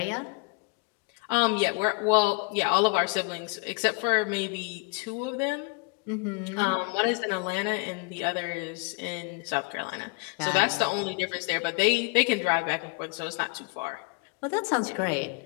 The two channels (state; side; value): quieter; right; 30.5 dB